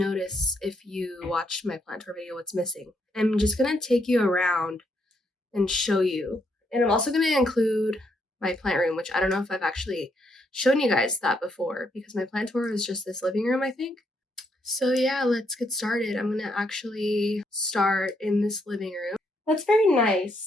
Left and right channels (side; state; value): both; normal; correlation 0.76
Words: if you watched my plant tour video, what's missing. I'm just going to take you around and show you. And I'm also going to include my plant room, which I don't know if I've actually shown you guys that before because my plant tour is just this living room, I think. So yeah, let's get started. I'm going to actually start in this living room. That's very